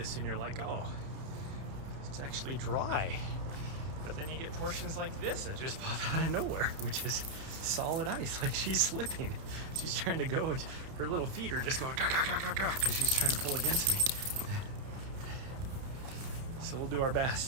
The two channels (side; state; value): left; late; 30 ms